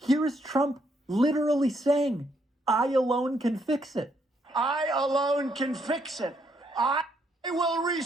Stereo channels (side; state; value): both; normal; correlation 0.74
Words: is Trump literally saying, I alone can fix it. I alone can fix it. I will